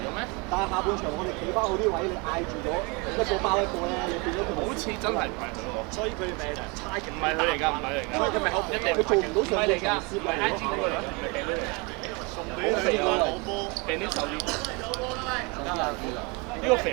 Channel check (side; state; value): left; quieter; 29.3 dB